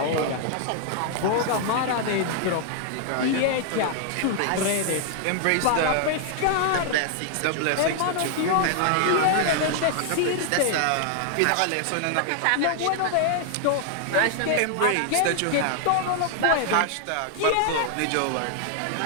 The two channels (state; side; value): different; both; correlation 0.00